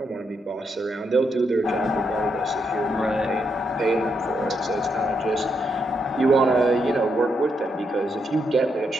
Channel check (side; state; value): both; normal; correlation 0.79